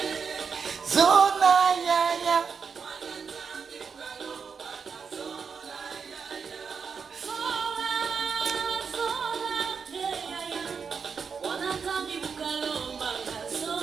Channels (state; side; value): quieter; left; 5.9 dB